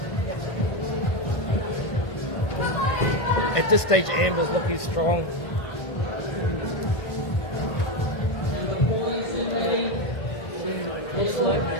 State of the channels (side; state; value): right; late; 1.7 ms